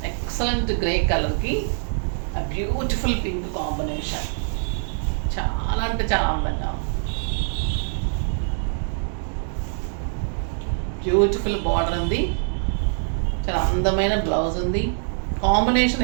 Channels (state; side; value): silent; left; digital silence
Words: ఎక్సలెంట్ గ్రే కలర్కి బ్యూటిఫుల్ పింక్ కాంబినేషన్, చాలా అంటే చాలా అందంగా ఉంది. బ్యూటిఫుల్ బార్డర్ ఉంది, చాలా అందమైన బ్లౌజ్ ఉంది,